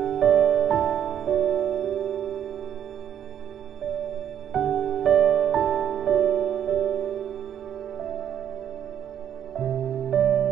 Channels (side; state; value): left; quieter; 9.5 dB